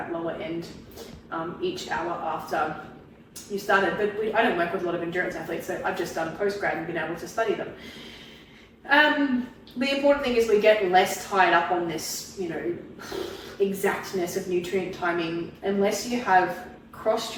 lower end each hour after you started. But I don't work with a lot of endurance athletes, so I've just done postgrad and been able to study them. The important thing is we get less tied up on this, exactness of nutrient timing, unless you have crossed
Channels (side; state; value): both; identical; correlation 1.00